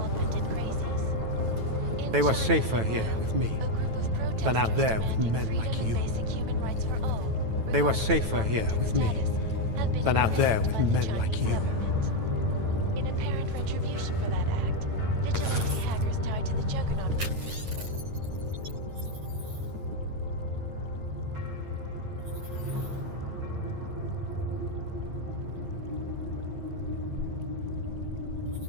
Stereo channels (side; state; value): left; late; 9.1 ms